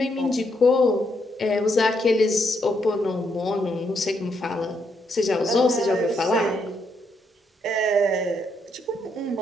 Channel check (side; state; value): both; normal; correlation 0.76